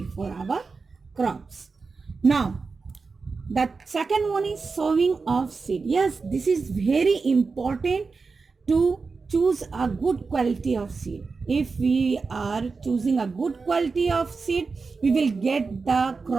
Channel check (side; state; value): left; quieter; 4.5 dB